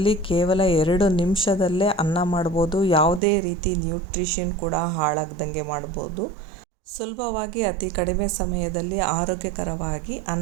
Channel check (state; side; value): drops out; left; at 3.2 s